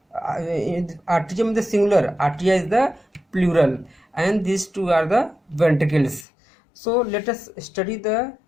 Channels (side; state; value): right; drops out; at 6.2 s